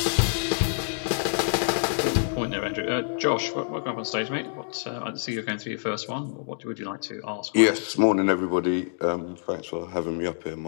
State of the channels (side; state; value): right; silent; digital silence